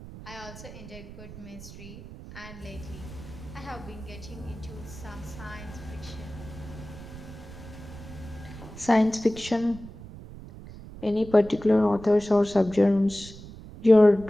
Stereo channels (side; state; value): right; noise; rumble, 15 dB below the sound